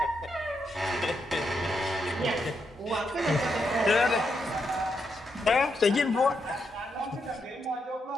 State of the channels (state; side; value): normal; both; correlation 0.81